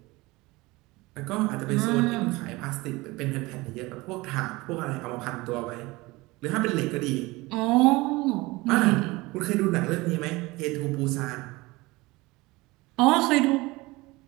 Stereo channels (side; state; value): left; quieter; 21.9 dB